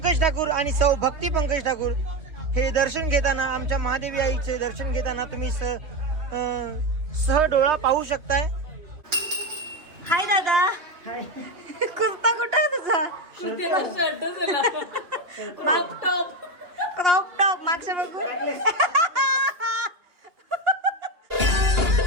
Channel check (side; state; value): left; late; 2.8 ms